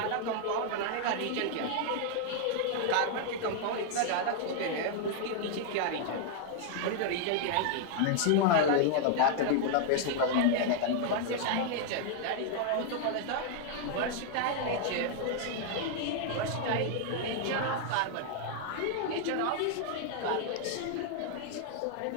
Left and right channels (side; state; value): both; different; correlation 0.00